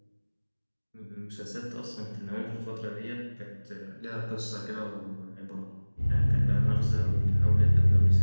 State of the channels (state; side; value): inverted; both; correlation -1.00